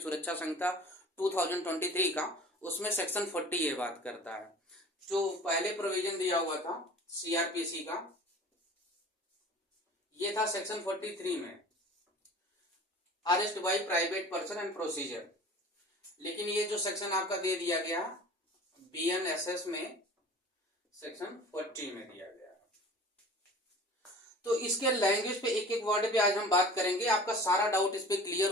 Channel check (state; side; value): normal; both; correlation 0.42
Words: सुरक्षा संहिता 2023 का, उसमें सेक्शन 40 ये बात करता है। जो पहले प्रोविजन दिया हुआ था सीआरपीसी का, ये था सेक्शन 43 में arrest by private person and procedure. लेकिन ये जो सेक्शन आपका दे दिया गया बीएनएसएस में सेक्शन 40 में दिया गया। तो इसके लैंग्वेज पे एक एक वर्ड पे आज हम बात करेंगे, आपका सारा डाउट इस पे क्लियर